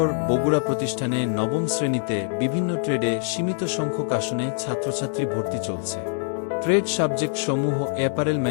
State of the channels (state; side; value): silent; right; digital silence